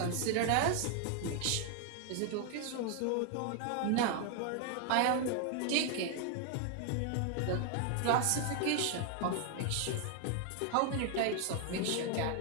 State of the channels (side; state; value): both; different; correlation 0.01